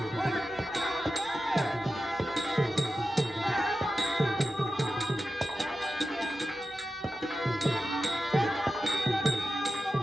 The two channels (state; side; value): normal; both; correlation 0.91